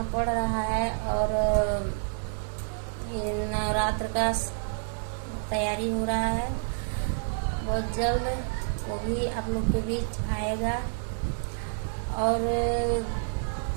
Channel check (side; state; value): left; silent; digital silence